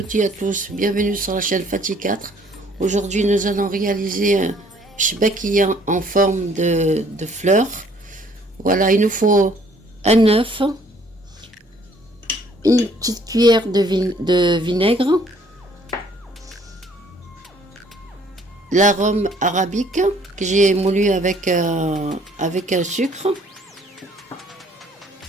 toutes et à tous, bienvenue sur la chaîne Fatih 4. Aujourd'hui nous allons réaliser un chbakia en forme de fleurs. Voilà, il nous faut un œuf, une petite cuillère de vinaigre, l'arôme arabique que j'ai moulu avec un sucre,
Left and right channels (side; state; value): both; normal; correlation 0.60